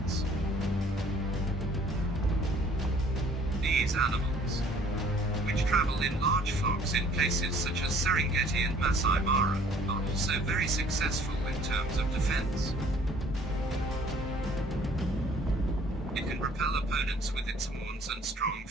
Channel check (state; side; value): normal; both; correlation 0.56